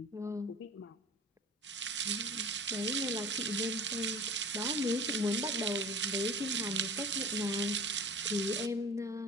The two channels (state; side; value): normal; both; correlation 0.41